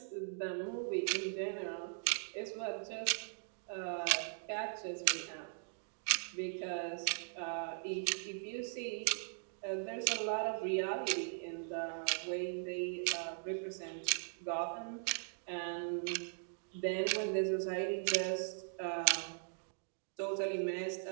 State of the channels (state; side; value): silent; left; digital silence